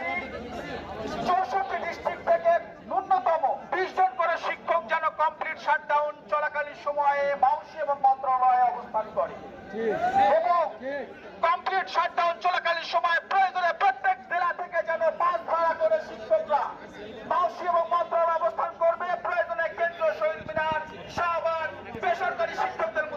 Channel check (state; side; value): identical; both; correlation 1.00